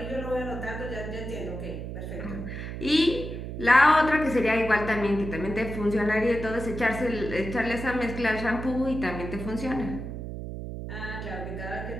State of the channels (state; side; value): noise; right; hum, 7 dB below the sound